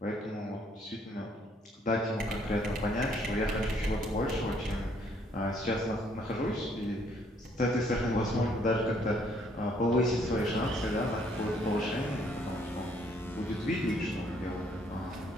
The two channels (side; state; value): both; normal; correlation 0.66